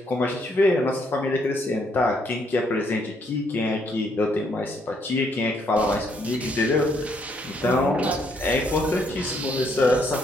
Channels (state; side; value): normal; both; correlation 0.71